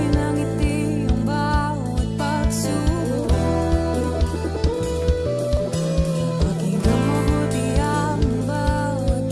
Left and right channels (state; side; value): identical; both; correlation 1.00